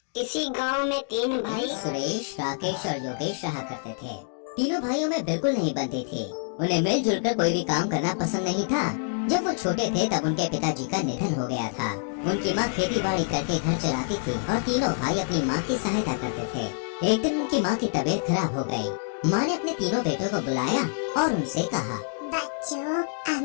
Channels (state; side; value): silent; right; digital silence